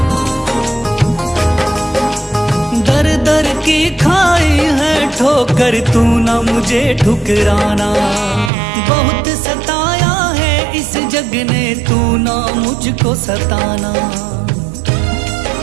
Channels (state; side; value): drops out; left; at 8.5 s